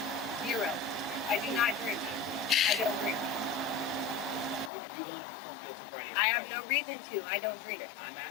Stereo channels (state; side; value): drops out; right; at 4.7 s